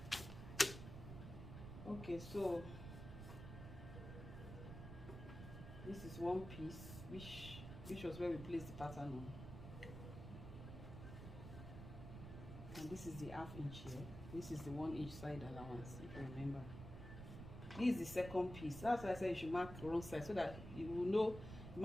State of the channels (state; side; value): noise; right; rumble, 9 dB below the sound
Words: Okay, so this is one piece, which was where we placed the pattern on, and this is the half inch here. This is the 1 inch side allowance, if you remember. This is the second piece. That's why I said you should mark the wrong side, so that you will know.